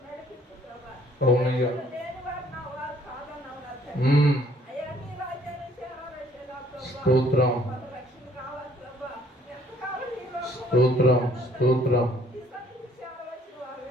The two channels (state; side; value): normal; both; correlation 0.61